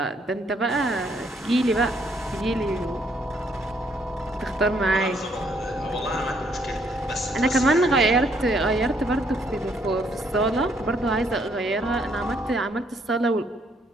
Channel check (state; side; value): normal; both; correlation 0.69